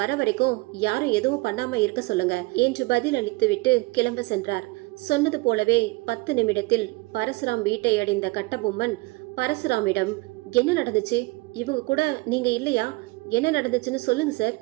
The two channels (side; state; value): left; quieter; 24.5 dB